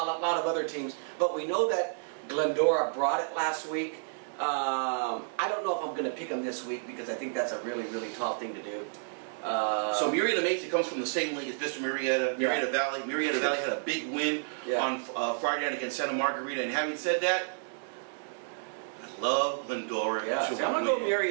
of other teams, but we know that Glendora brought it last week. I don't know if I'm going to pick them this week, because I think that's a really, really tall thing to do. So Murrieta Mesa comes from the same league as Vista Murrieta, Murrieta Valley. Murrieta Valley had a big win on Friday night against Santa Margarita, and having said that, love Glendora. Yeah, I'm going to go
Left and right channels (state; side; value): silent; left; 57 dB below the other